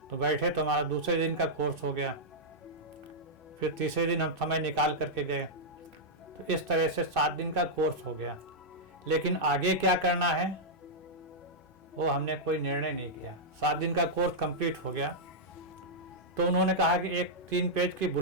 तो बैठे तो हमारा दूसरे दिन का कोर्स हो गया। फिर तीसरे दिन हम समय निकाल करके गए, तो इस तरह से 7 दिन का कोर्स हो गया। लेकिन आगे क्या करना है वो हमने कोई निर्णय नहीं किया। 7 दिन का कोर्स कंप्लीट हो गया तो उन्होंने कहा कि एक 3 पेज की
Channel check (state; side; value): normal; both; correlation -0.07